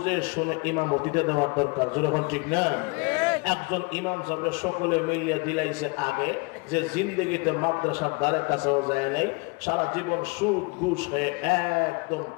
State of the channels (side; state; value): right; quieter; 29.0 dB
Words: শুনে ইমামতিতে দেওয়ার দরকার। যখন ঠিক না, একজন ইমাম সাহেব সকলে মিলিয়ে দিলাইছে আগে যে জিন্দগিতে মাদ্রাসার দ্বারে কাছেও যায় নাই, সারা জীবন সুদ ঘুষ হয়ে একদম